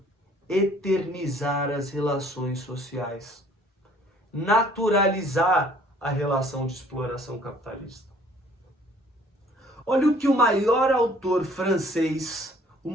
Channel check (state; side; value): normal; both; correlation 0.57